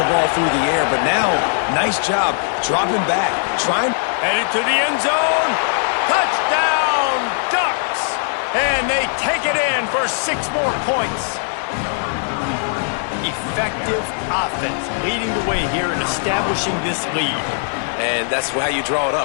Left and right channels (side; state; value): right; silent; 57 dB below the other